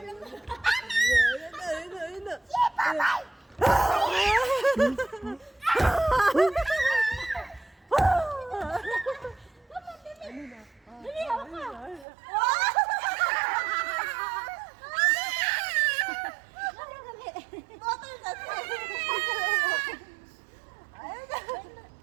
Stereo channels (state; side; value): drops out; left; at 12.1 s